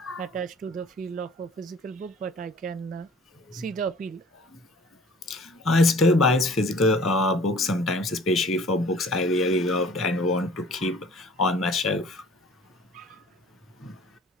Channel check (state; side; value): normal; both; correlation 0.49